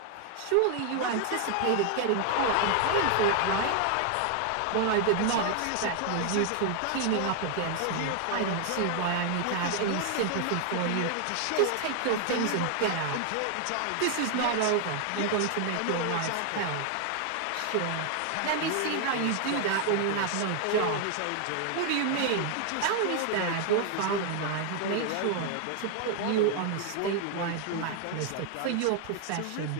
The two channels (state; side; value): different; both; correlation 0.00